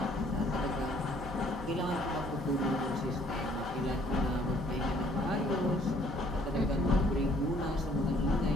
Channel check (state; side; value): normal; both; correlation 0.61